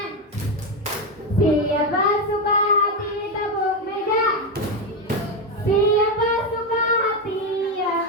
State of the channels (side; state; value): both; normal; correlation 0.10